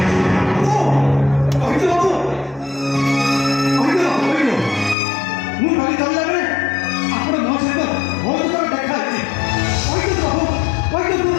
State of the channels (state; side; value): drops out; right; at 5.0 s